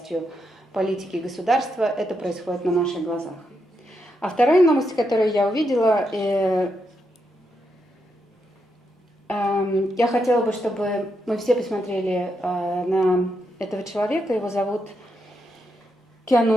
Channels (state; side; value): normal; both; correlation 0.82